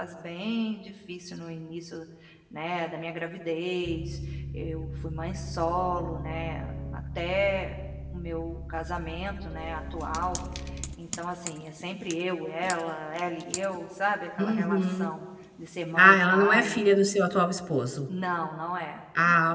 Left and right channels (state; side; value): identical; both; correlation 1.00